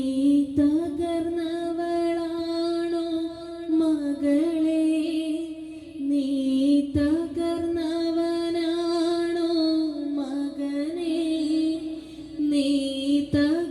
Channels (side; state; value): both; identical; correlation 1.00